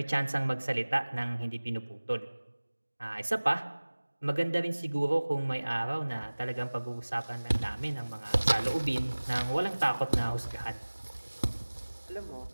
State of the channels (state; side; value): inverted; both; correlation -1.00